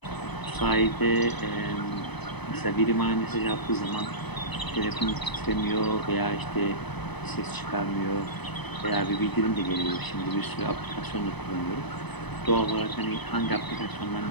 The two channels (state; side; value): late; right; 0.99 ms